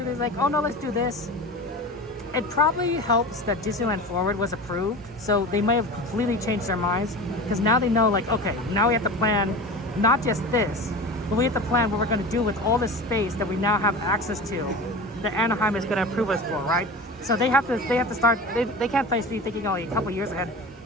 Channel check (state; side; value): normal; both; correlation 0.32